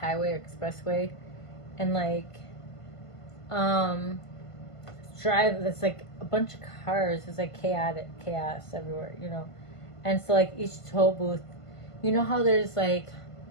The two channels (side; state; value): right; late; 1.5 ms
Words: or expressway, and like, there's like a bunch of cars. There's like chaos everywhere, you know. And so like each toll booth, you know how there's like,